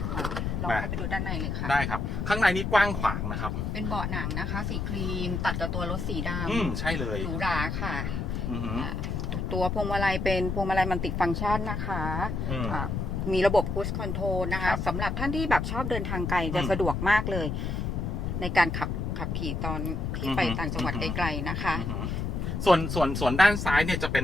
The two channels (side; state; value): left; noise; rumble, 2 dB below the sound